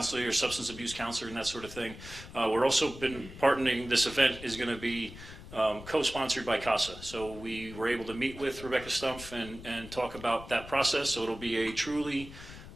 or substance abuse counselor and that sort of thing. We're also been partnering. This event is going to be co-sponsored by CASA. So we were able to meet with Rebecca Stumpf and talk about that process. So it'll be a truly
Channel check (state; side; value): noise; left; rumble, 14 dB below the sound